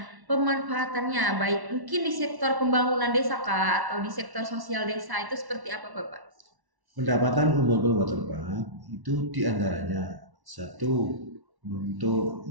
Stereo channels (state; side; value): late; left; 1.1 ms